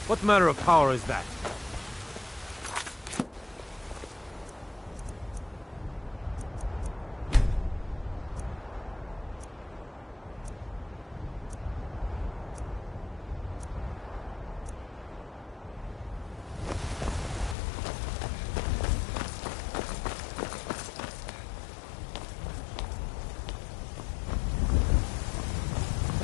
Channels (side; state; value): right; drops out; at 17.6 s